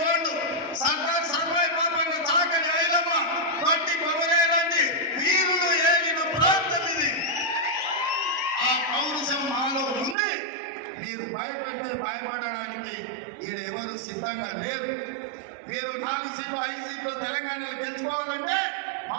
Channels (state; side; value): drops out; left; at 10.2 s